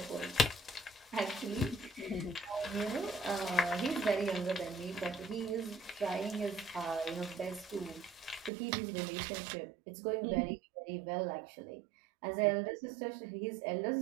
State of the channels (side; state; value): left; drops out; at 8.5 s